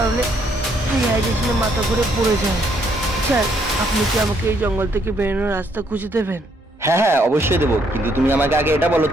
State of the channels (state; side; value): normal; both; correlation 0.70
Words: রিহাইড্রেশনে মাথা ঘুরে পড়ে যায়। স্যার আপনি কি আমাকে এই জঙ্গল থেকে বেরোনোর রাস্তা খুঁজে দেবেন? হ্যাঁ হ্যাঁ অবশ্যই দেবো, কিন্তু তুমি আমাকে আগে এটা বলো